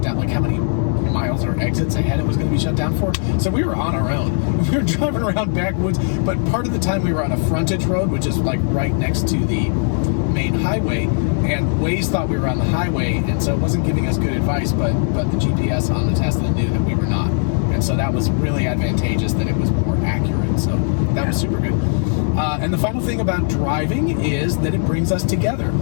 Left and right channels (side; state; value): right; silent; 57 dB below the other